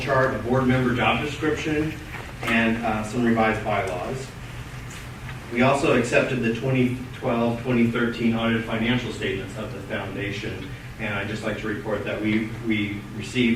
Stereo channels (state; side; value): identical; both; correlation 1.00